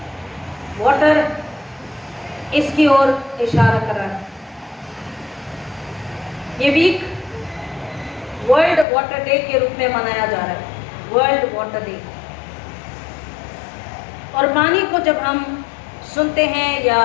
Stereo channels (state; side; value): drops out; right; at 8.8 s